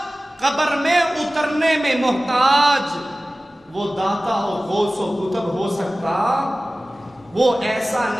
قبر میں اترنے میں محتاج، وہ داتا اور غوث و کتب ہو سکتا، وہ ایسا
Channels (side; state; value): both; normal; correlation 0.97